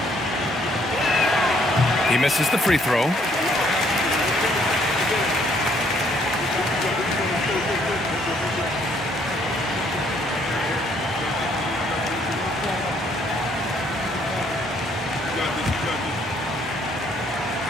He misses the free throw.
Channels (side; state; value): both; normal; correlation 0.66